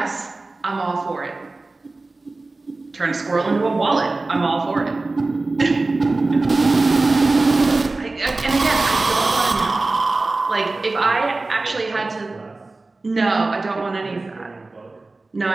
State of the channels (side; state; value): left; quieter; 3.3 dB